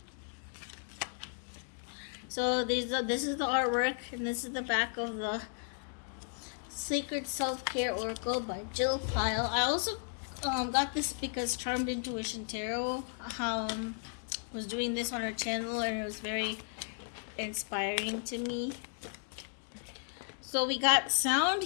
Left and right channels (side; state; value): right; silent; 55 dB below the other